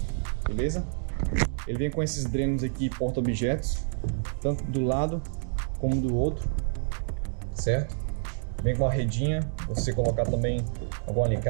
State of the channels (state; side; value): silent; left; digital silence